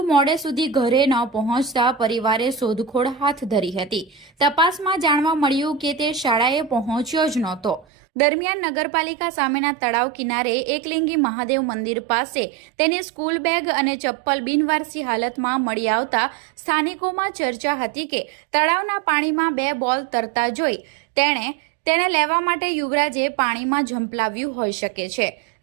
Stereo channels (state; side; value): drops out; left; at 7.9 s